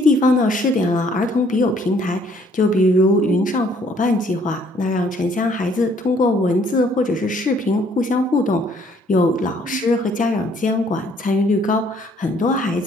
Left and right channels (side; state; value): both; normal; correlation 0.63